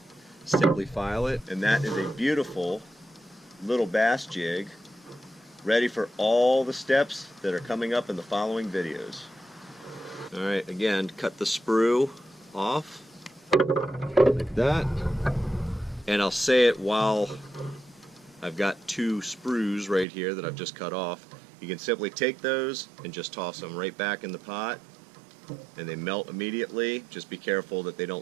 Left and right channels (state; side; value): drops out; left; at 20.1 s